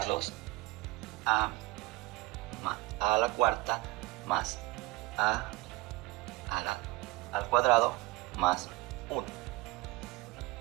a la cuarta más al cuadrado más 1.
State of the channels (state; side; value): quieter; left; 21.8 dB